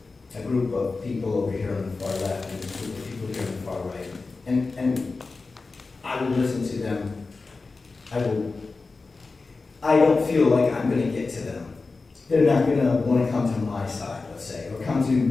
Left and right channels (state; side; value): quieter; right; 3.9 dB